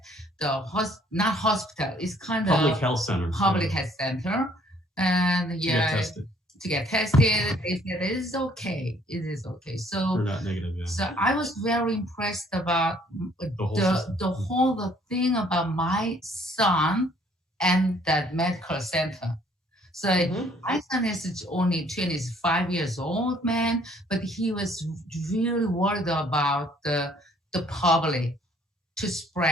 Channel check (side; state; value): both; normal; correlation 0.61